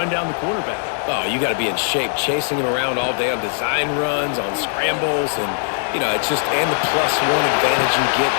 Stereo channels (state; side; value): silent; right; digital silence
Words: down the quarterback. Oh, you got to be in shape, chasing him around all day on design runs, on scrambles, and, you know, it's just, and the +1 advantage you get